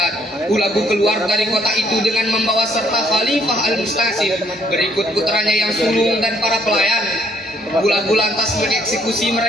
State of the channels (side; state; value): both; normal; correlation 0.67